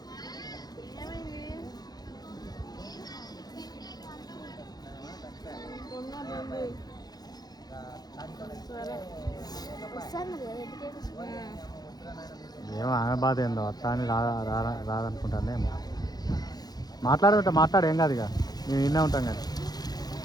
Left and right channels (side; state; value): right; late; 0.19 ms